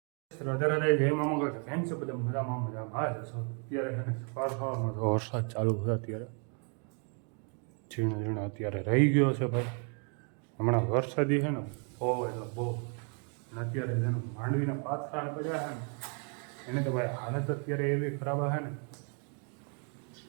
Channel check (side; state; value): left; quieter; 39.7 dB